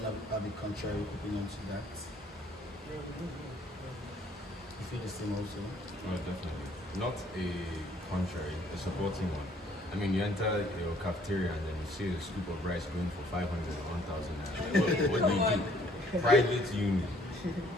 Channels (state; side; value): normal; both; correlation 0.61